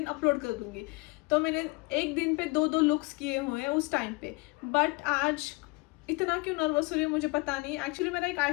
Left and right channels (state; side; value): quieter; right; 25.0 dB